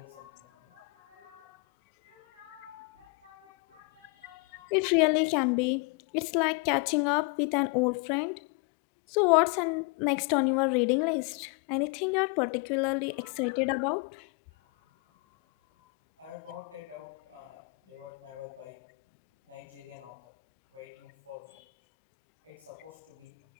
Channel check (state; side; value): quieter; right; 30.1 dB